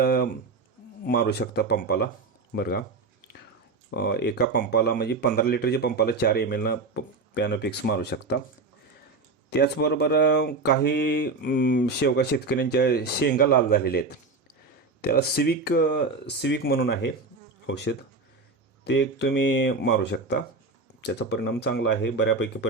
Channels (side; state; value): left; quieter; 3.9 dB